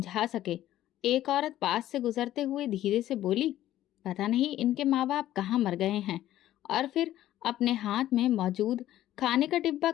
सके। एक औरत पास से गुजरते हुए धीरे से बोली, पता नहीं इनके माँ बाप कहाँ मर गए हैं। और फिर अपने हाथ में मौजूद खाने का डिब्बा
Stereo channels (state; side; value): quieter; right; 13.4 dB